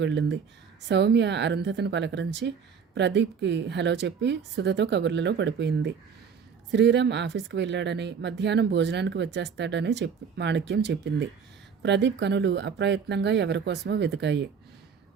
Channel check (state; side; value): quieter; left; 6.5 dB